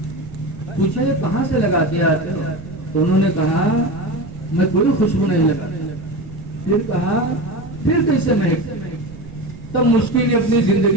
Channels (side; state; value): right; noise; rumble, 16 dB below the sound